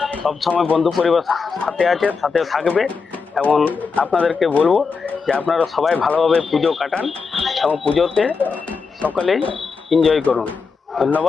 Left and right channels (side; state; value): right; quieter; 5.0 dB